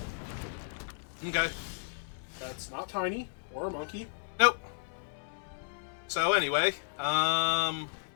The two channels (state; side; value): silent; right; 56 dB below the other